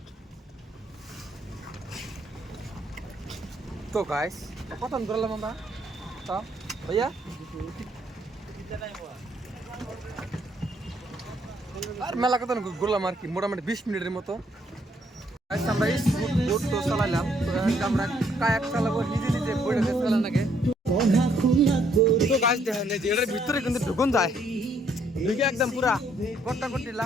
তো গাইস কত ধরলাম আমরা তো ভাইয়া আর মেলা কত ঘুরলাম আর কি মোটামুটি 20 মিনিটের মতো আমরা বোট তো চালাইলাম আমরা কায়াক চালাবো নিজে নিজে বইটাকে চালান আগে তো গাছ দেখেন যে এটার ভিতরে কিন্তু ঢুকুন যায় ঢুকে একদম পুরা গট্টা গট্টি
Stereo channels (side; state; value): both; normal; correlation 0.69